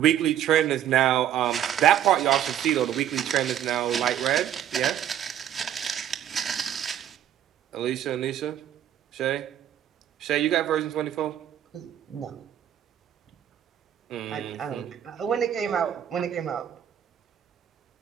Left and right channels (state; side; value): quieter; left; 10.5 dB